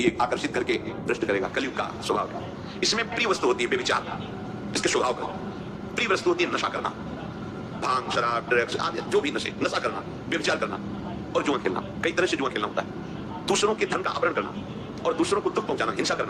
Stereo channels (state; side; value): identical; both; correlation 1.00